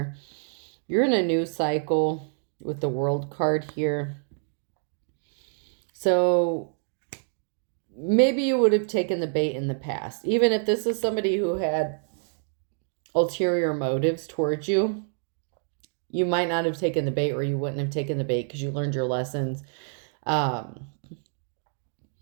You're in a new cycle with the World card here. So maybe you would have taken the bait in the past. Even if this is somebody who had ulterior motives towards you, you might not have taken the bait, or you wouldn't have taken the bait because you learned your lessons.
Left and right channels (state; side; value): silent; left; 60 dB below the other